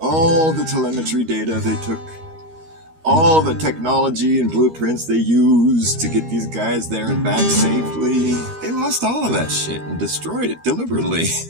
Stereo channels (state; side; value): late; left; 13 ms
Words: the telemetry data they took. All the technology and blueprints they used to get these guys there and back safely. They lost all of that shit and destroyed it deliberately.